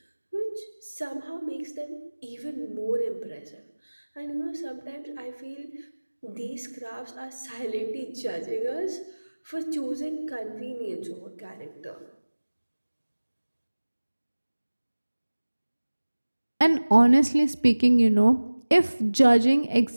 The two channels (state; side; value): inverted; both; correlation -1.00